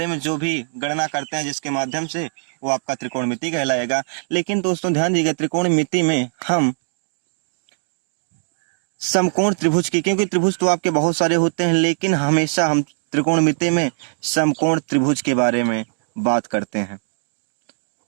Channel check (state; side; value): silent; left; digital silence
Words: में जो भी गणना करते हैं जिसके माध्यम से, वो आपका त्रिकोणमिति कहलाएगा। लेकिन दोस्तों ध्यान दीजिएगा, त्रिकोणमिति में हम समकोण त्रिभुज की, क्योंकि त्रिभुज तो आपके बहुत सारे होते हैं, लेकिन हमेशा हम त्रिकोणमिति में समकोण त्रिभुज के बारे में बात करते हैं।